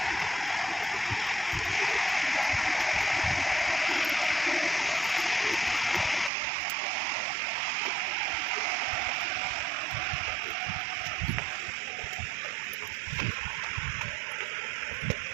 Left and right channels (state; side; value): drops out; left; at 6.3 s